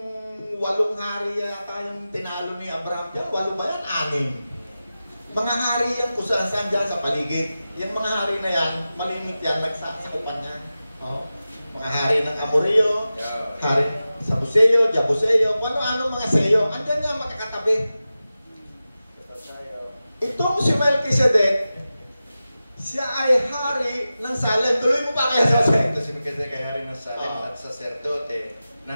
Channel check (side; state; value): both; inverted; correlation -0.94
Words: hari yata yung tinalo ni Abraham dyan. 8 ba yan? 6. Mga hari yan kung saan dyan sa paligid. Yung mga hari na yan, malimit yan, nagsasakupan niya. Oh. Mga hari ng Amorio, hari sa Buseo, Jabuseo, ano mga Seo. Andyan nga makakatabi. Itong si Melchizedek, siya ay hari ng Salem. Tuloy mo pa kaya sa Salem? Ito si Melchizedek ay hari ng Salem at saserdote